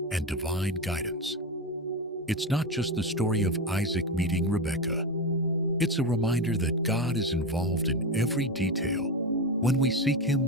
and divine guidance. It's not just the story of Isaac meeting Rebekah. It's a reminder that God is involved in every detail when we seek Him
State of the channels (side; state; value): both; normal; correlation 0.17